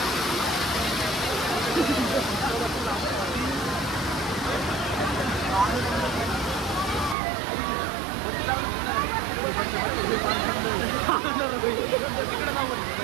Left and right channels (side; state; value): left; drops out; at 7.2 s